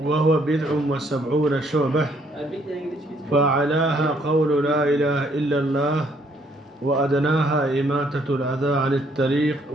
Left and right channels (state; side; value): normal; both; correlation 0.67